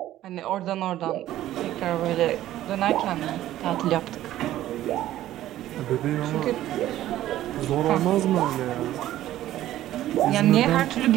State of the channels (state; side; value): quieter; left; 13.7 dB